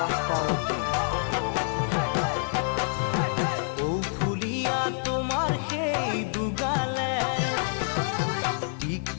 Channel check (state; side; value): silent; right; 58 dB below the other